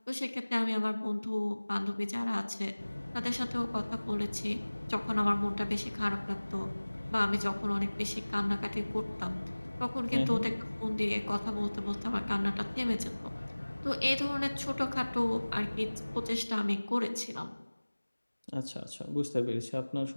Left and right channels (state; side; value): inverted; both; correlation -1.00